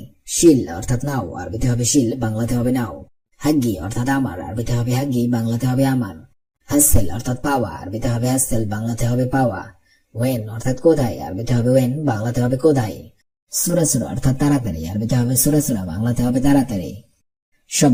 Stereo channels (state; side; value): identical; both; correlation 1.00